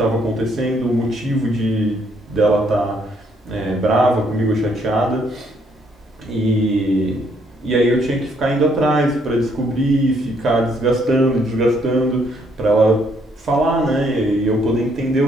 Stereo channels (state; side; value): normal; both; correlation 0.70